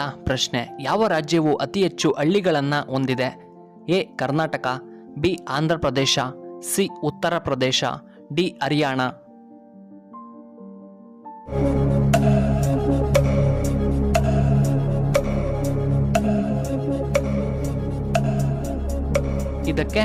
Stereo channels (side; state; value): both; identical; correlation 1.00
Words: ಪ್ರಶ್ನೆ, ಯಾವ ರಾಜ್ಯವು ಅತಿ ಹೆಚ್ಚು ಹಳ್ಳಿಗಳನ್ನು ಹೊಂದಿದೆ? A Karnataka, B Andhra Pradesh, C Uttar Pradesh, D Haryana. ಇದಕ್ಕೆ